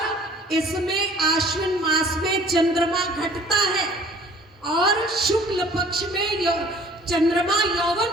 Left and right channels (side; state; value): both; normal; correlation 0.52